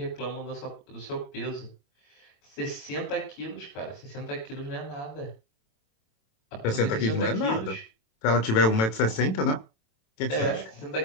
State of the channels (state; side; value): late; right; 27 ms